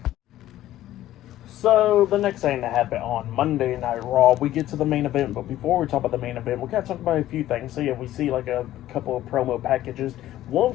So the next thing that happened on Monday Night Raw, we get to the main event. But before we talk about the main event, we gotta talk about a few things. So yeah, we see like a couple of promo packages. One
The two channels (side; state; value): right; quieter; 13.8 dB